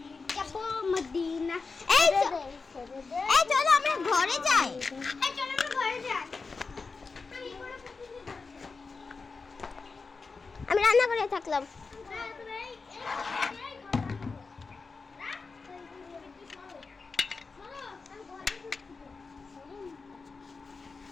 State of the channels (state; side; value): quieter; right; 4.4 dB